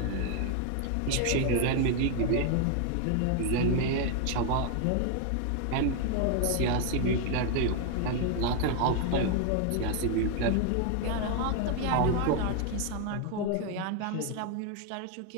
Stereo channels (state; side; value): different; both; correlation 0.00